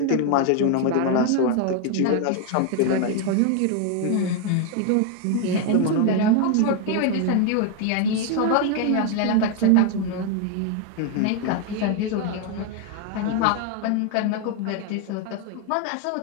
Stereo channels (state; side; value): different; both; correlation 0.01